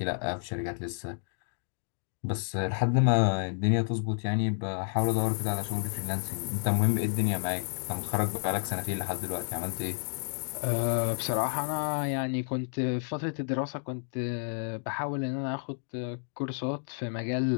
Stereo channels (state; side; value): silent; right; digital silence